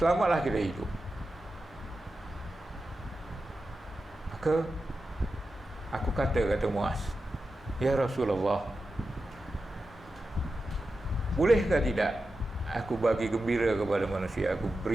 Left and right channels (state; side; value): normal; both; correlation 0.91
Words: kita hidup. Maka Aku kata Muaz, ya Rasulullah, bolehkah tidak aku bagi gembira kepada manusia, aku